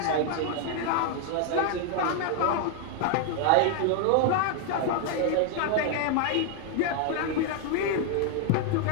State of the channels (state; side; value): different; both; correlation 0.00